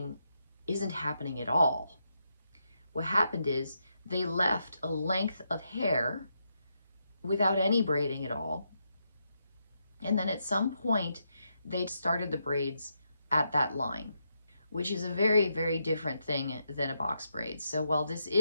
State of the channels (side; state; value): both; inverted; correlation -0.82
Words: isn't happening at all. What happened is they left a length of hair without any braiding at all. And then at some point, they started the braids at that line, which is a very, very different thing than a box braid. So while this